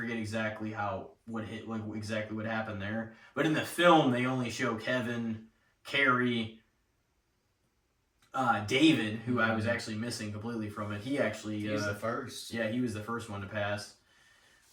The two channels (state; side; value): identical; both; correlation 1.00